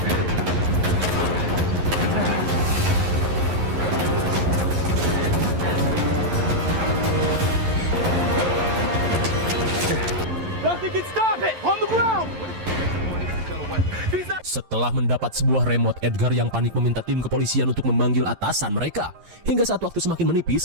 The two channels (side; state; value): left; late; 11 ms